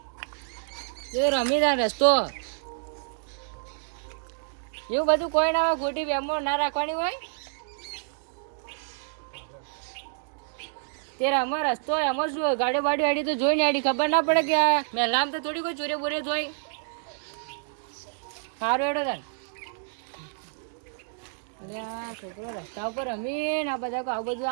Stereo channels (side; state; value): left; silent; digital silence